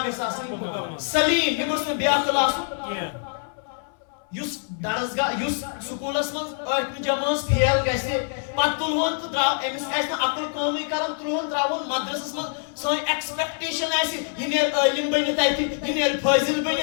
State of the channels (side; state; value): right; silent; 62 dB below the other